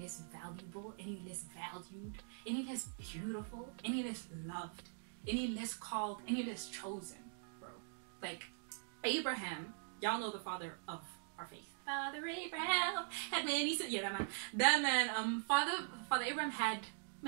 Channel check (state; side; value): silent; left; digital silence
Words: valuable, any less valued, any less beautiful, any less loved, any less called, any less chosen, bro. Like Abraham, y'all know the father of our faith. Father Abraham had many sons. Yeah, that man. Father Abraham had